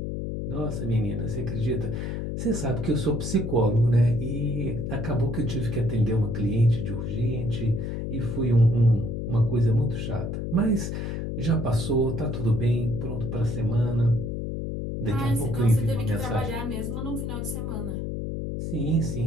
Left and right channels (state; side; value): noise; left; hum, 3 dB below the sound